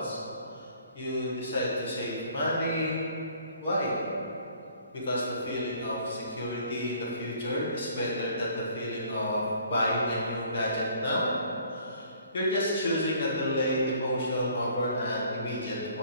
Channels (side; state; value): both; inverted; correlation -0.57